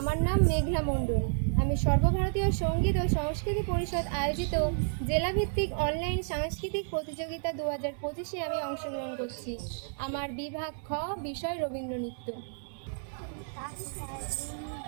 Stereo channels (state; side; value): silent; left; digital silence